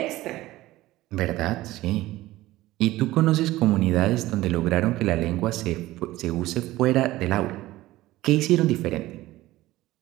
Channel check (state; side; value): quieter; left; 17.0 dB